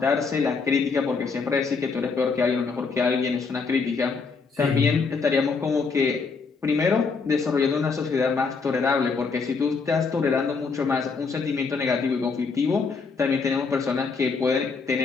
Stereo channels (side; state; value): right; quieter; 4.8 dB